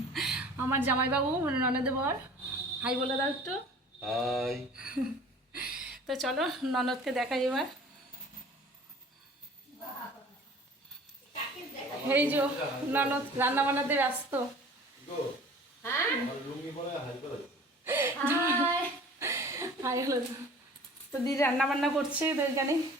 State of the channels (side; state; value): both; normal; correlation 0.46